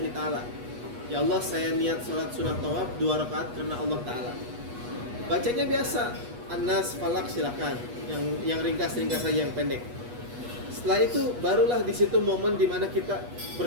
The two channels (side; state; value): left; late; 8.3 ms